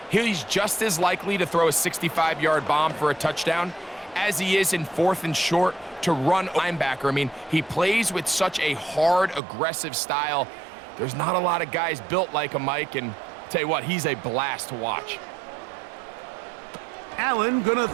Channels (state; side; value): drops out; left; at 9.4 s